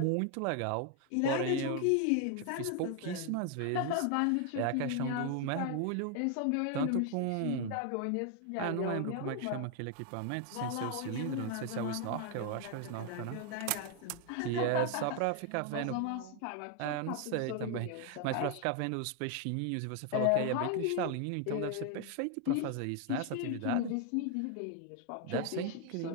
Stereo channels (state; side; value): different; both; correlation 0.00